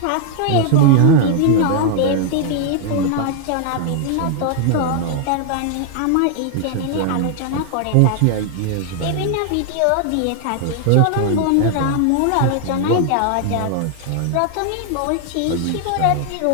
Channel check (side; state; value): both; different; correlation 0.00